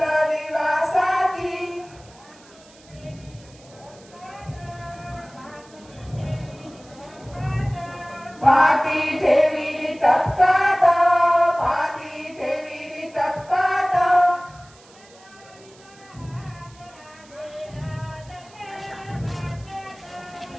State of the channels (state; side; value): noise; right; hiss, 25 dB below the sound